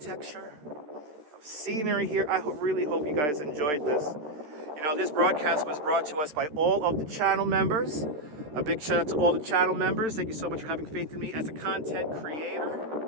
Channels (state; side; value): late; left; 13 ms